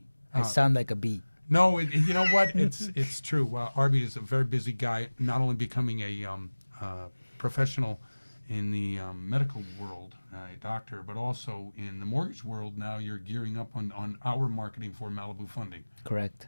I sound like a bee. No, you know what? It's true. Arby is a very busy guy, not only becoming a professional in the medical world, a doctor, but also in the mortgage world. Now you're gearing up on our marketing for Malibu Funding. Correct.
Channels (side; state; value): both; inverted; correlation -1.00